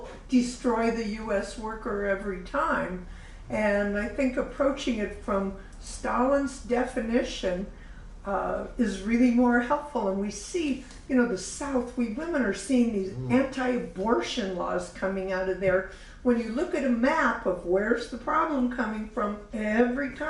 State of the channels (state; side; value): identical; both; correlation 1.00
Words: destroy the U.S. worker every time. And I think approaching it from Stalin's definition is really more helpful. And we see, you know, the South, we women are seeing these anti-abortion laws coming out of there. When you look at a map of where's the problem coming from, every